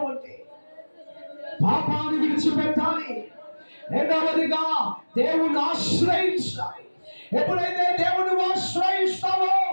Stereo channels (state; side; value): inverted; both; correlation -1.00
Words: ఉంటే పాపాన్ని విడిచిపెట్టాలి. రెండవదిగా దేవుని ఆశ్రయించాలి. ఎప్పుడైతే దేవుని ఆశ్రయిస్తావో